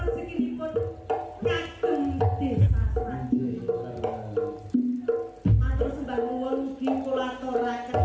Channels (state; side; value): identical; both; correlation 1.00